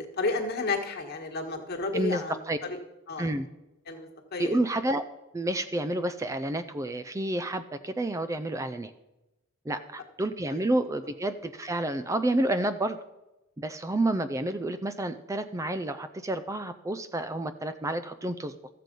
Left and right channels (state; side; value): normal; both; correlation 0.61